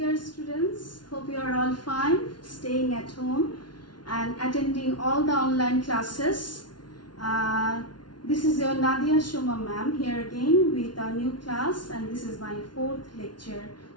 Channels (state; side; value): late; right; 0.70 ms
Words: students. Hope you are all fine, staying at home and attending all the online classes. This is your Nadia Shoma ma'am here again with a new class, and this is my fourth lecture